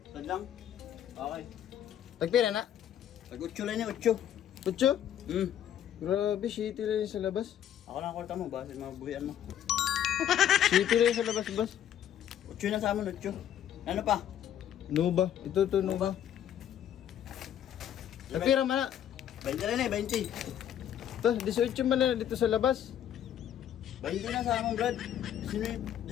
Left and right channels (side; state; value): right; quieter; 10.4 dB